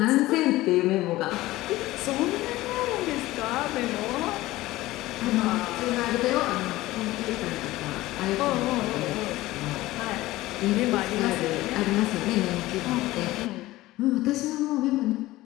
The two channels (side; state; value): right; quieter; 17.5 dB